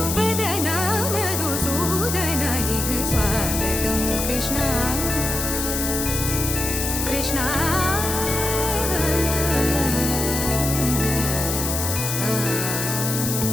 मधुसूदन इह स्वागतं कृष्ण कृष्ण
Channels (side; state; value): left; noise; hiss, 2 dB below the sound